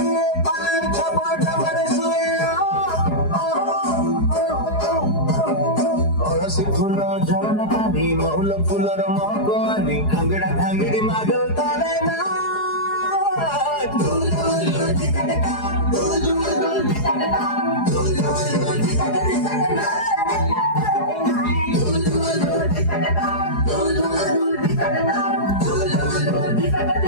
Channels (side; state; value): right; late; 4.8 ms